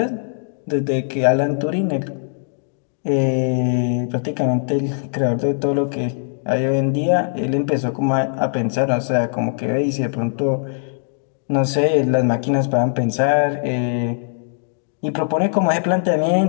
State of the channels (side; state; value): right; silent; digital silence